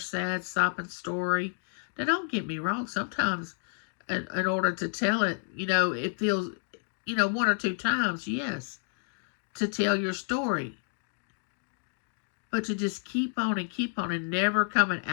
sopping story. Now, don't get me wrong. Sometimes, in order to tell it, it feels, 1 or 2 times, yes, to tell your story. But to just keep on and never coming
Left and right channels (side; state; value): right; silent; 58 dB below the other